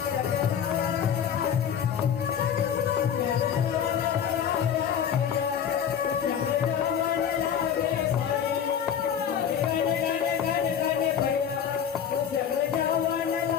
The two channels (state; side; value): quieter; right; 8.4 dB